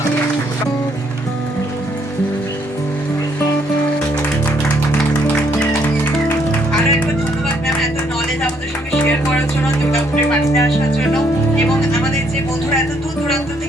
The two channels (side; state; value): both; normal; correlation 0.69